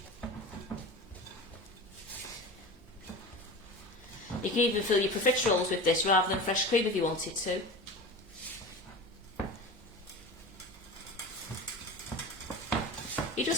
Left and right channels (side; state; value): both; normal; correlation 0.31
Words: You can even fill your profiteroles with this rather than fresh cream if you wanted to. You